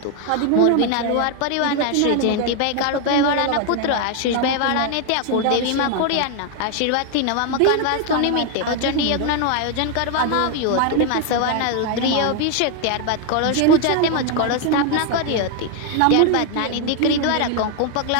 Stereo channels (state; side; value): different; both; correlation 0.01